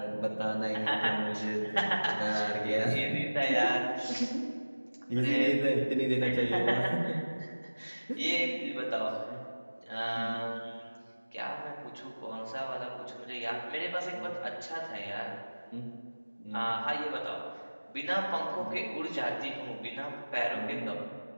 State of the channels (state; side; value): inverted; both; correlation -1.00